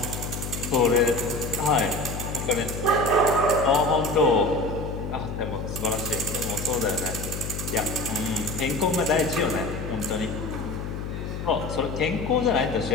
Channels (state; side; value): noise; left; hum, 6 dB below the sound